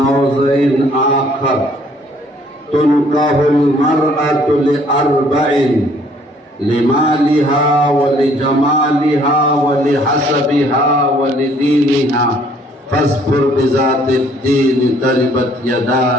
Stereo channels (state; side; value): normal; both; correlation 0.61